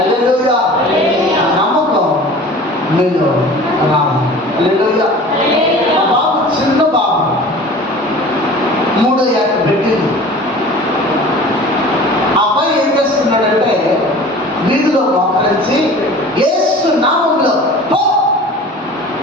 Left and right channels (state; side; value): normal; both; correlation 0.41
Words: ఆ నమ్మకం మీలో రావాలి. హల్లెలూయా. ఆ బాబు చిన్న బాబు 3 ఏళ్ళ పెట్టింది. ఆ అబ్బాయి ఏం చేస్తున్నాడంటే వీధిలో మోకరించి యేసు నామంలో పో,